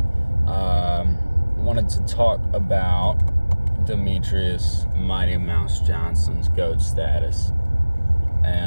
Wanted to talk about Demetrious Mighty Mouse Johnson's GOAT status.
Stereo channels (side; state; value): both; inverted; correlation -1.00